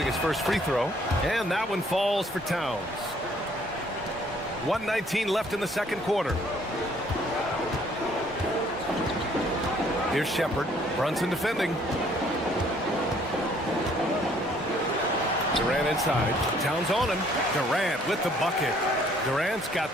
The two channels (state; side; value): normal; both; correlation 0.62